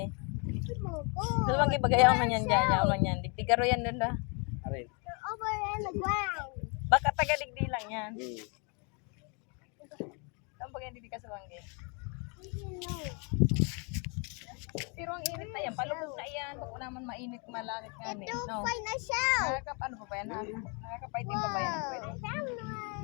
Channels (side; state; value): right; quieter; 34.6 dB